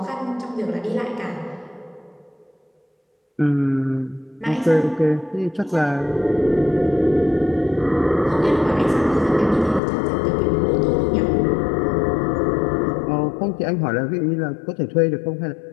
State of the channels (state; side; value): drops out; right; at 9.8 s